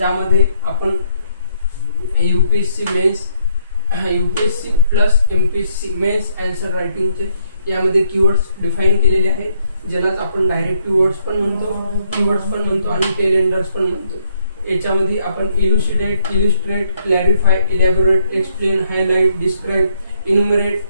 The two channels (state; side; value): inverted; both; correlation -0.71